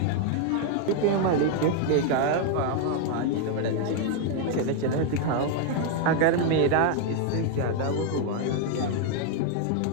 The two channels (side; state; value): both; different; correlation 0.00